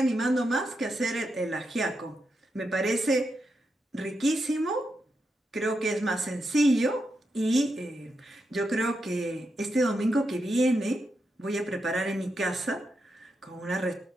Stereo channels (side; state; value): both; normal; correlation 0.85